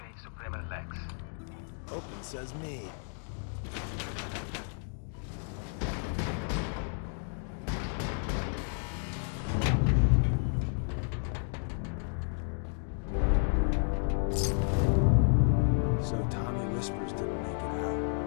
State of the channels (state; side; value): silent; right; 57 dB below the other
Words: Suprema Lex. Hope it says me. So Tommy Whispers didn't make it